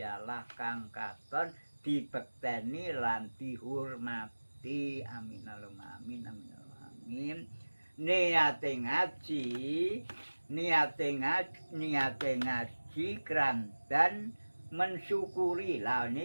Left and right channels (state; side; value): inverted; both; correlation -1.00